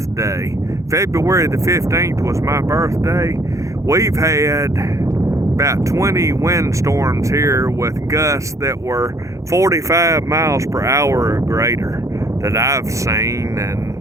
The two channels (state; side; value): late; left; 0.15 ms